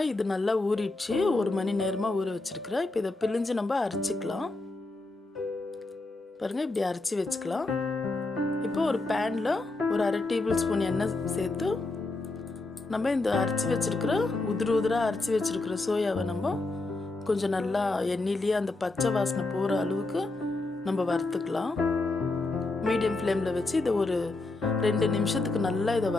இது நல்லா ஊறிடுச்சு. 1 மணி நேரமா ஊற வச்சிருக்கிறேன். இப்போ இதை பிழிஞ்சு நம்ம அரைச்சிக்கலாம். பாருங்க, இப்படி அரைச்சி வச்சுக்கலாம். இப்போ ஒரு பேன்ல ஒரு 1/2 டேபிள் ஸ்பூன் எண்ணெய் சேர்த்து நம்ம இந்த அரைச்சி வச்சிருக்கிற உதிரா அரைச்சி வச்சிருக்கிற சோயாவை நம்ம கொஞ்சம் நல்லா எண்ணெயிலேயே அந்த பச்சை வாசனை போகிற அளவுக்கு நம்ம வறுத்துக்கலாம். மீடியம் ஃப்ளேமில் வச்சு இதை ஒரு 2 நிமிஷத்துக்கு நல்லா இதை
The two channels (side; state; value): right; quieter; 3.1 dB